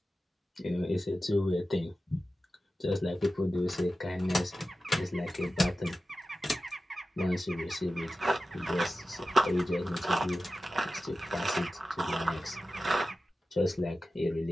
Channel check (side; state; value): both; normal; correlation 0.94